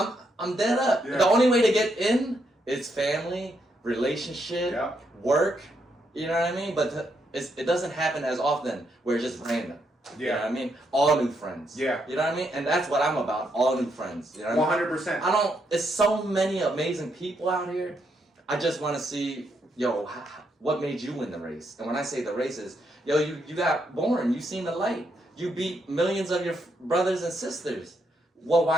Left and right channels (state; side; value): normal; both; correlation 0.78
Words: dead up. The only way to get in is family, relationship, work, you know what I mean? But it doesn't happen as often where it's just random. You know what I mean? All new friends. You know what I mean? And that's what I'm about, all new friends. You know what 100%. I mean? It's so many amazing people out here. I just want to see, yo, what made you win the race? And when I say the race is, yo, you got born, you seen the light. You beat millions of your brothers and sisters. Well,